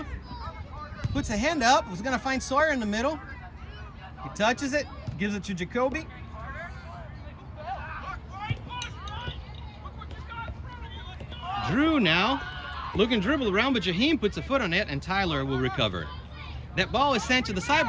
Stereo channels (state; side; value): identical; both; correlation 1.00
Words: Puts a hand up, was gonna find Sawyer in the middle. He touches it, gives it to Jacoby. Drew now, looking to dribble around, but Jaheim puts a foot on it and Tyler will recover. That ball is sent to the side,